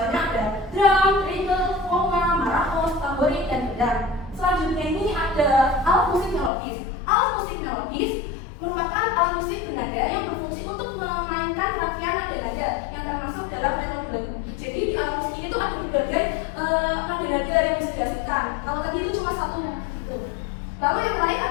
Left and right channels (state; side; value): drops out; right; at 6.5 s